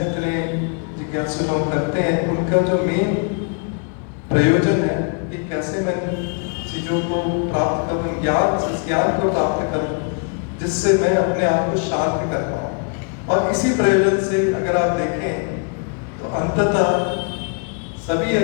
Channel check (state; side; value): quieter; right; 39.9 dB